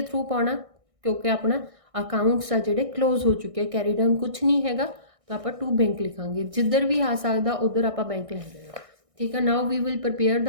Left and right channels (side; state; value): left; late; 1.6 ms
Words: थ्रू पाना, क्योंकि अपना अकाउंट्स आ जोड़े क्लोज हो चुके हैं, कैरी डाउन कुछ नहीं है, तो आप टू बैंक लिखांगे, जिधर भी आ सकता उधर आप बैंक लिख देना, ठीक है। Now we will prepare